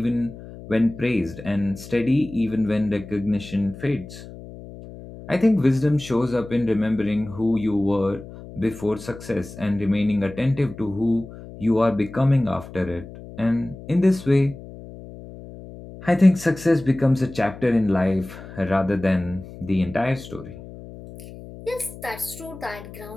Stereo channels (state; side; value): noise; left; hum, 15 dB below the sound